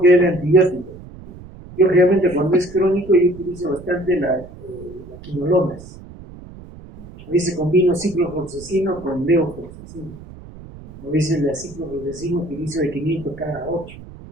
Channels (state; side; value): noise; right; rumble, 17 dB below the sound